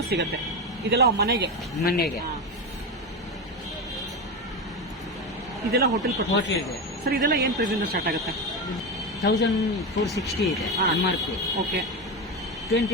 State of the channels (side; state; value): both; normal; correlation 0.17